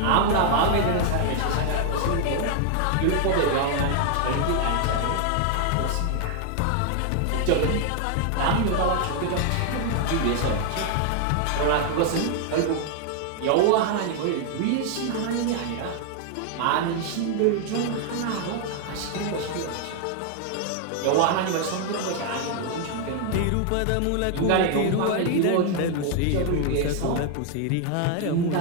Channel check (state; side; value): different; both; correlation 0.00